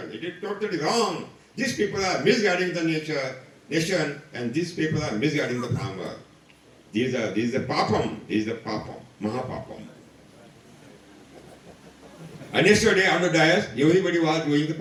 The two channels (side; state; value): both; identical; correlation 1.00